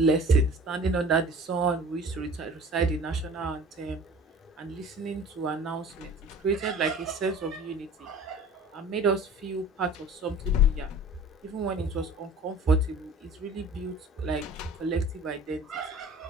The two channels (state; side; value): normal; both; correlation 0.44